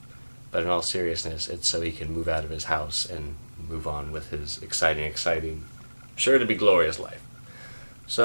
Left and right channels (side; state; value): both; inverted; correlation -1.00